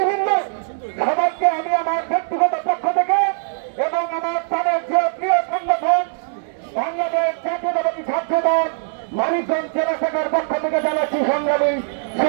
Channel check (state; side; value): silent; left; 65 dB below the other